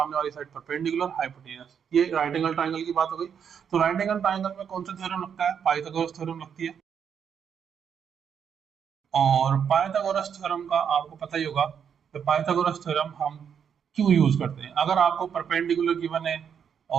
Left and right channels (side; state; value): left; quieter; 7.6 dB